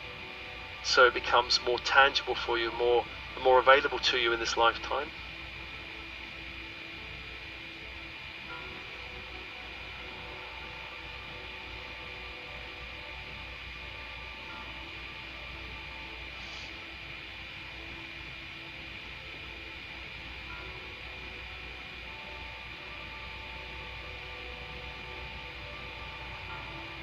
so it becomes more tangible for you, more available to you in this lifetime.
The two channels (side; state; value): both; identical; correlation 1.00